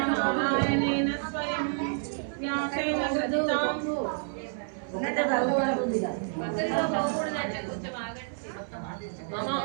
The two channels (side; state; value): left; silent; 58 dB below the other